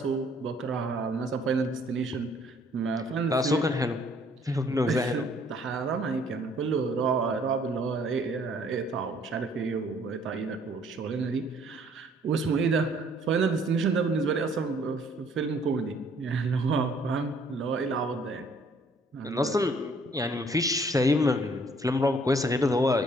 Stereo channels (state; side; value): normal; both; correlation 0.61